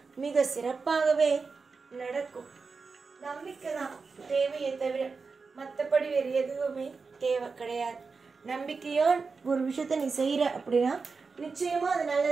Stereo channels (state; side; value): quieter; left; 4.7 dB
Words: மிக சிறப்பாகவே நடக்கும். நம்பிக்கை தான் தேவையை தவிர மற்றபடி வேறு எதுவுமே தேவை கிடையாது. நம்பிக்கையோ ஒரு விஷயத்த நீ செய்யற அப்படின்னா நிச்சயமா அது